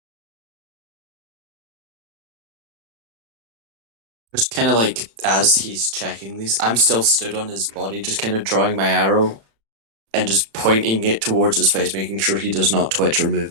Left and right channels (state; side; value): late; left; 35 ms